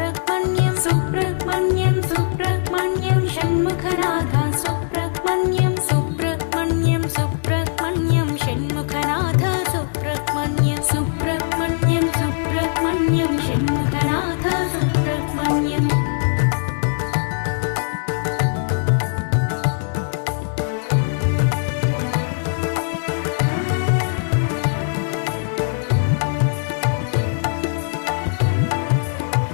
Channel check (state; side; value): silent; right; digital silence